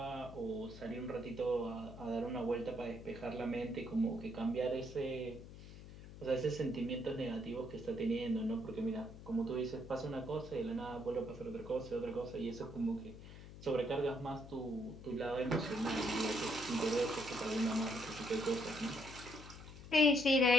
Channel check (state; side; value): noise; left; hum, 14 dB below the sound